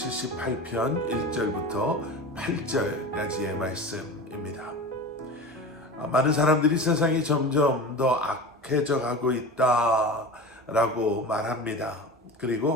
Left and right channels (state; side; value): normal; both; correlation 0.31